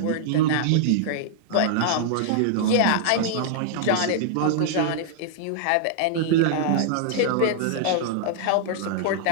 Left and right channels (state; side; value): different; both; correlation -0.01